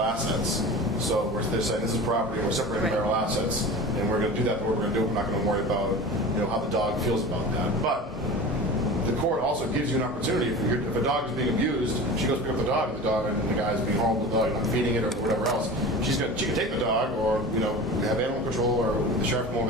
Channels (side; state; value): both; normal; correlation 0.34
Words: assets. So they're saying this is property, we're separating Right. marital assets, and we're going to do that. But what we're going to do, we're not going to worry about how the dog feels about that. But the court also gives you an opportunity. If a dog is being abused, she goes pick up the dog, and the guy is being horrible to the dog, not feeding it or whatever else. She can take the dog, or have animal control, or the sheriff come over